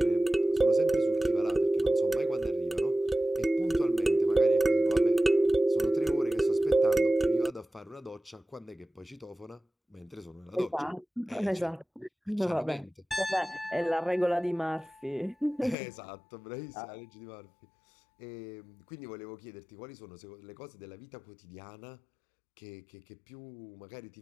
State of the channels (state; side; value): drops out; right; at 15.8 s